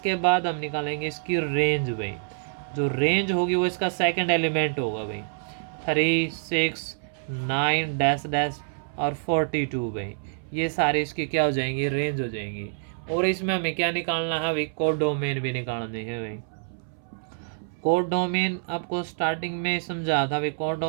बाद हम निकालेंगे इसकी रेंज भाई, जो रेंज होगी वो इसका सेकंड एलिमेंट होगा भाई, 3 6 9 डैश डैश और 42 भाई, ये सारे इसकी क्या हो जाएंगी, रेंज हो जाएंगी। और इसमें हमें क्या निकालना है भाई, कोड डोमेन भी निकालने हैं भाई। कोड डोमेन आपको स्टार्टिंग में समझा था भाई, कोड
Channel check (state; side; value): silent; left; 60 dB below the other